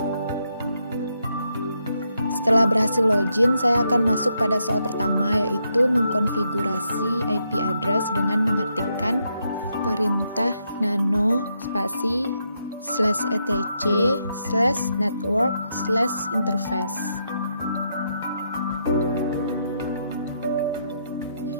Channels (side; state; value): both; inverted; correlation -0.79